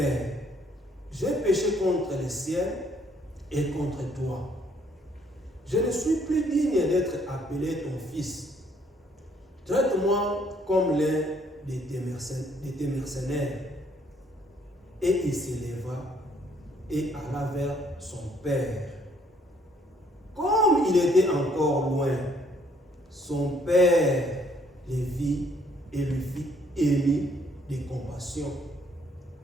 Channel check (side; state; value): both; normal; correlation 0.66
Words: j'ai péché contre le ciel et contre toi. Je ne suis plus digne d'être appelé ton fils. Traite-moi comme l'un de tes mercenaires. Et il s'éleva et alla vers son père. Comme il était encore loin, son père le vit et lui fit ému de compassion.